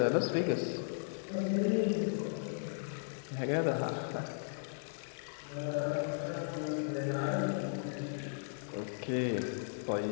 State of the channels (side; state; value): right; silent; 54 dB below the other